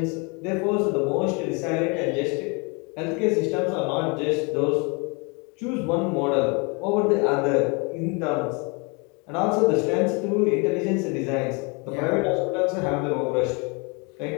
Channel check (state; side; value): quieter; right; 31.5 dB